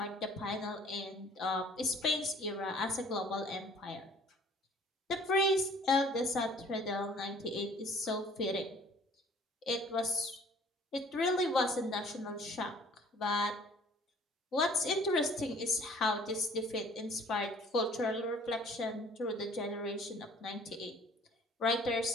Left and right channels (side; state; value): both; normal; correlation 0.53